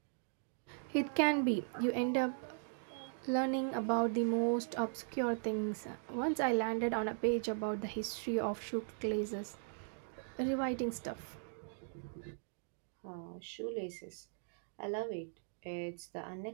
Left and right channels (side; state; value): left; silent; digital silence